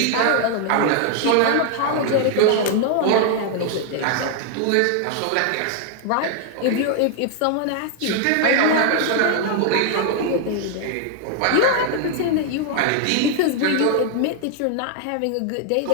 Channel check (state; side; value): different; both; correlation 0.00